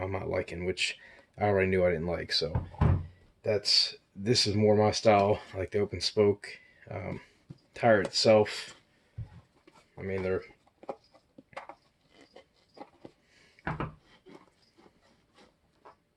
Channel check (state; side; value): identical; both; correlation 1.00